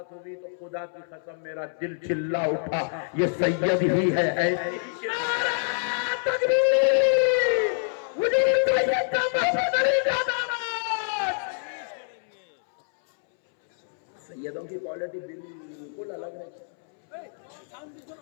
ہوئی تو خدا کی قسم میرا دل چلا اٹھا. یہ سید ہی ہے. ایسی سیدوں کی کوالٹی بالکل الگ رہتی.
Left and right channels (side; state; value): right; silent; 61 dB below the other